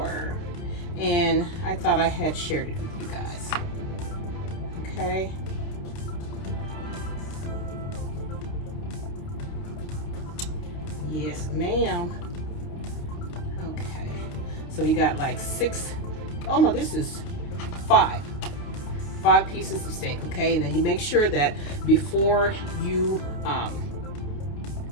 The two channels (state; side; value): late; right; 29 ms